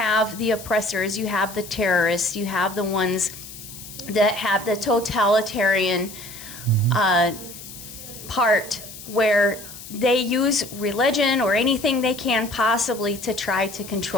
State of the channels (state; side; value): noise; left; hiss, 14 dB below the sound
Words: the oppressors, you have the terrorists, you have the ones that have the totalitarian part where they use religion or anything they can possibly to try to